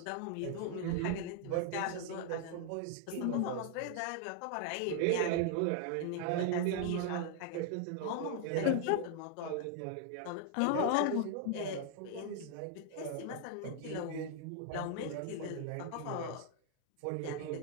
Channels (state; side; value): different; both; correlation 0.00